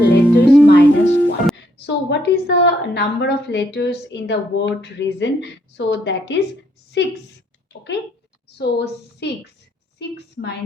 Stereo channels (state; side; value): normal; both; correlation 0.72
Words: minus 1. So what is the number of letters in the word reason? So that is 6. Okay, so 6